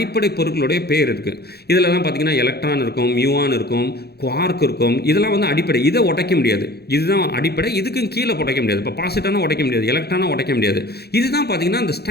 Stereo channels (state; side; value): late; right; 0.47 ms